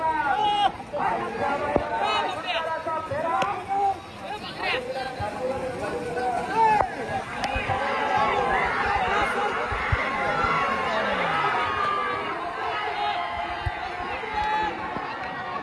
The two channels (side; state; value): both; identical; correlation 1.00